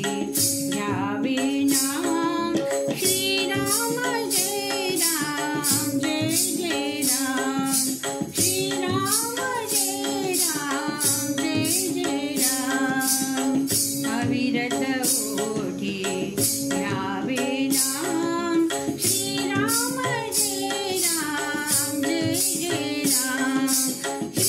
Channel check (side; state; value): both; identical; correlation 1.00